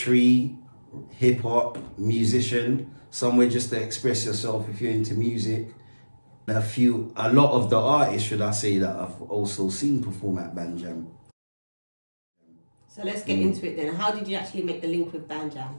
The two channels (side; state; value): both; inverted; correlation -1.00